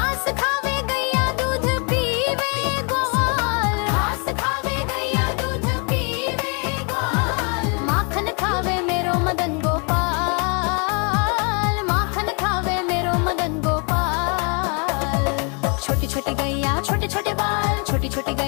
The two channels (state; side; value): quieter; right; 35.7 dB